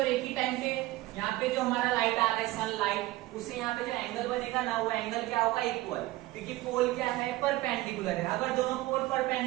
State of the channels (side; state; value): left; quieter; 17.9 dB